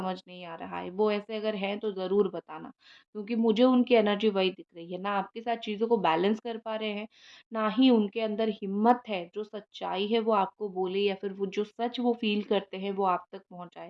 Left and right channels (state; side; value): identical; both; correlation 1.00